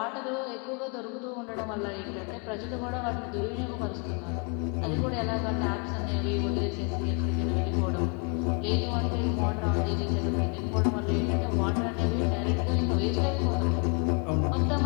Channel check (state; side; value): quieter; right; 36.0 dB